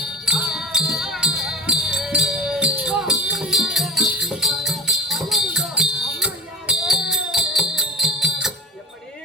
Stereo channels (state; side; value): normal; both; correlation 0.31